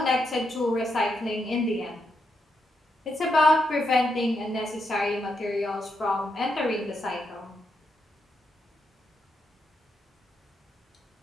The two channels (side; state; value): both; normal; correlation 0.82